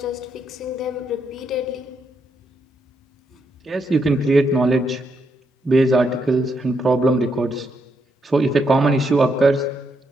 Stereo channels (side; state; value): both; normal; correlation 0.78